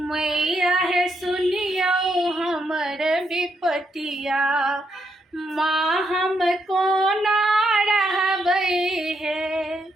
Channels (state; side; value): normal; both; correlation 0.78